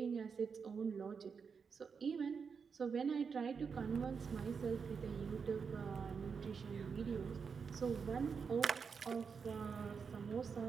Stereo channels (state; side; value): quieter; left; 5.8 dB